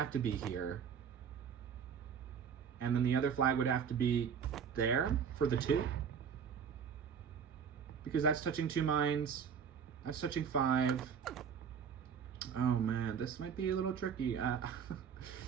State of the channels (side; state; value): left; quieter; 7.2 dB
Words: to be here. And then the other flag would have to be there for the 2. Because that's touching 2 mines. That's touching 5. Oh man, this might be a little tricky.